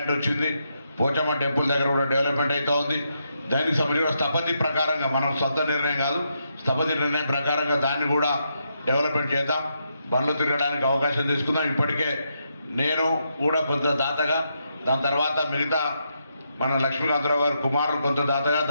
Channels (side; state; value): both; inverted; correlation -0.81